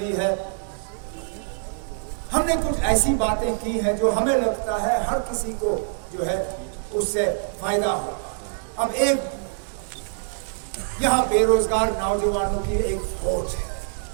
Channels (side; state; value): left; silent; digital silence